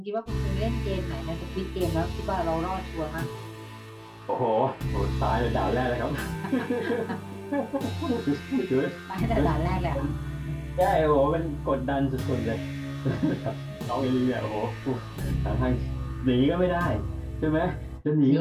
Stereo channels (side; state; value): both; identical; correlation 1.00